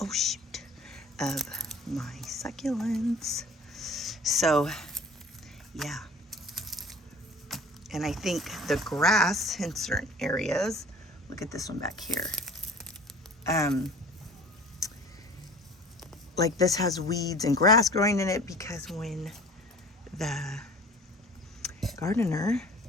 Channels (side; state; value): both; normal; correlation 0.44